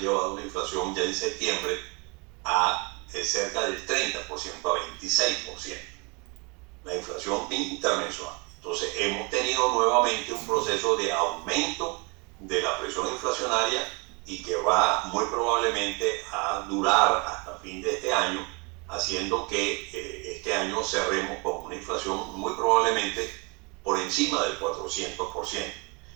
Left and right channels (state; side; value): quieter; left; 30.7 dB